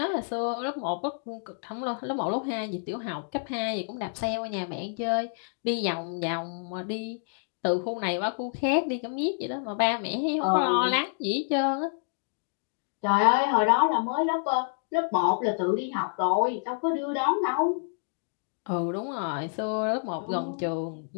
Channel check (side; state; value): right; silent; digital silence